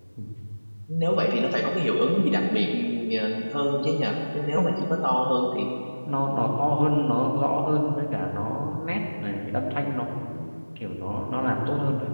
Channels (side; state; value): both; inverted; correlation -1.00